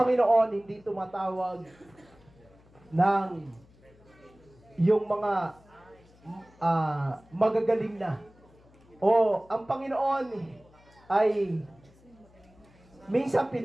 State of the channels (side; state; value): left; noise; hum, 27 dB below the sound